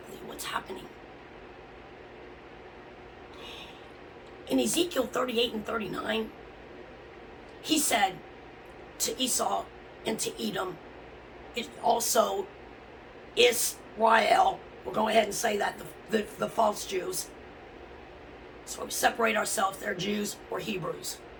what's happening. In Ezekiel 38 and 39, he said to Esau and to Edom, it also Israel, we'll go ahead and say that, the false Jews. So we separate ourselves, they're Jews or Hebrews.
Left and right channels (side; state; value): both; identical; correlation 1.00